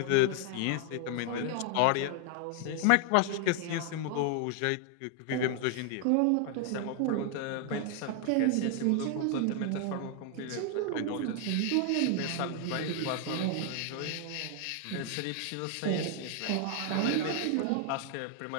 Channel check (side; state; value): both; different; correlation 0.00